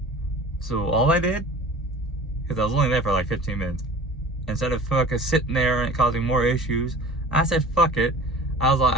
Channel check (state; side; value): normal; both; correlation 0.41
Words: So all I did, because I was only there for like 15 minutes, instead of fucking sitting there and causing more issues, I said fuck it. I